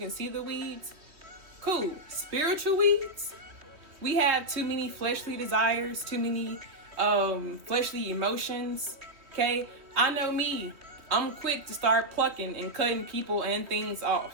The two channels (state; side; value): late; left; 3.2 ms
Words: see the weeds, cool. Spiritual weeds, we have too many fleshly desires, too many fleshly emotions, okay? I know me. I'm quick to start plucking and cutting people and things